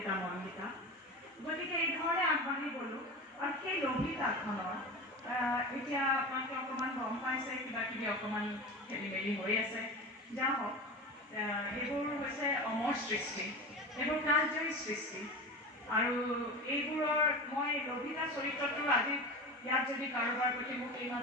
মন্দিতা। গতিকে এই ধৰণে আগবাঢ়ি গ'লোঁ। আৰু সেই লভিতাখনৰ এতিয়া আপোনালোকে অকণমান গম পাইছে, কিবা কিবি অকণমান খেলি মেলি হৈ আছে, যা হওক। এইবোৰ হৈছে অমৰ সৃষ্টি, এইবোৰ কালজয়ী সৃষ্টি। আৰু এইবোৰৰ মই লভিতা চৰিত্ৰটো আজি ইয়াত যদি কাৰোবাৰ প্ৰতি মোক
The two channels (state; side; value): normal; both; correlation 0.28